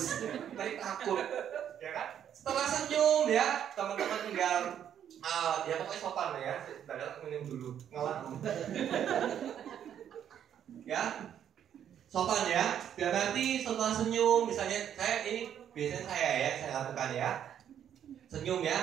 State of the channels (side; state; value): left; quieter; 9.6 dB